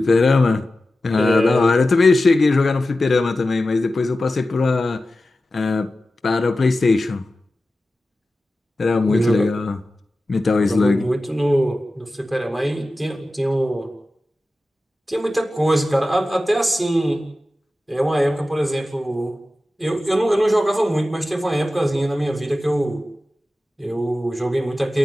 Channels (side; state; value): both; normal; correlation 0.94